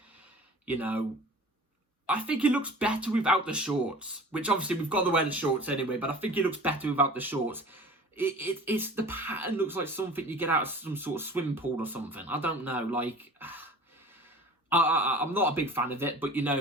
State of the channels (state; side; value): normal; both; correlation 0.42